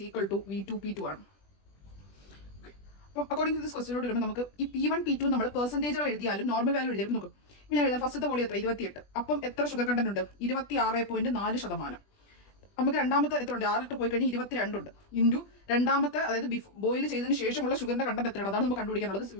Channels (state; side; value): late; right; 20 ms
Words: equal to V2 P2 ആണ്. അപ്പം അക്കോർഡിംഗ് ടു ദിസ് ക്വസ്റ്റിനോട് വരുമ്പോൾ നമുക്ക് ഈ P1 P2 നമ്മൾ പെർസെൻറ്റേജുകൾ എഴുതിയാലും നോർമൽ വാല്യൂ എഴുതിയാലും നോക്കും. ഞാൻ എഴുതാം ഫസ്റ്റത്തെ വോളിയം എത്ര? 28. അപ്പം എത്ര ഷുഗർ കണ്ടന്റ് ഉണ്ട്? 26.4%. നമുക്ക് രണ്ടാമത്തെ എത്ര ഉണ്ട്? 6 ലിറ്റർ പോയി കഴിഞ്ഞാൽ 22 ഉണ്ട്. ഇൻറ്റു രണ്ടാമത്തെ, അതായത് ബോയിൽ ചെയ്തതിന് ശേഷമുള്ള ഷുഗറിന്റെ കണ്ടന്റ് എത്രയാണ്? അതാണ് നമുക്ക് കണ്ടുപിടിക്കാനുള്ളത്.